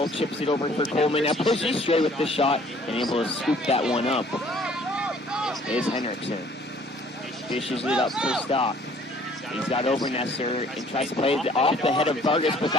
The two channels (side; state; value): both; normal; correlation 0.57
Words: chips it over for Coleman. Now pushes straight with the shot and able to scoop that one up. Is Henriksen. Dishes it up for Stock. He's got Obernesser and tries to play it off the head of Vargas, but